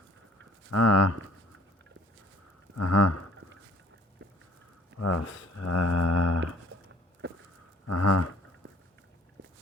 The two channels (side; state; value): both; normal; correlation 0.54